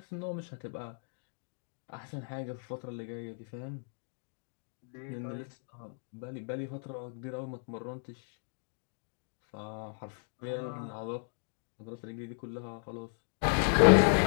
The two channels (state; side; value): silent; right; 54 dB below the other